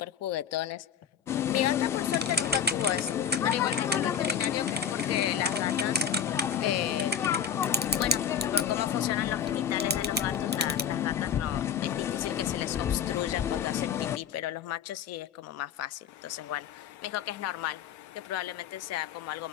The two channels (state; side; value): quieter; right; 7.9 dB